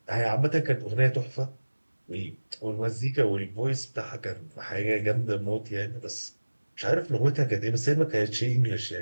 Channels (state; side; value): inverted; both; correlation -1.00